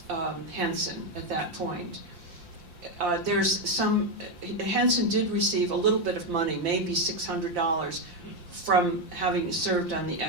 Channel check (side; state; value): left; late; 5.7 ms